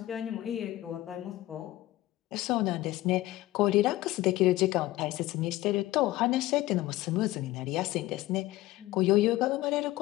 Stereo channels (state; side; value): quieter; right; 17.0 dB